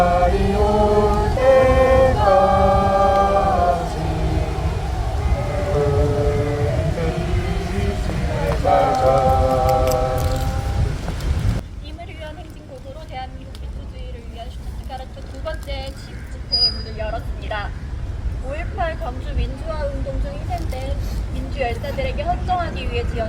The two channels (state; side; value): identical; both; correlation 1.00